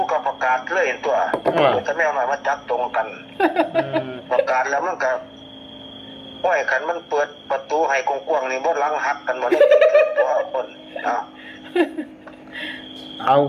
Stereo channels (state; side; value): identical; both; correlation 1.00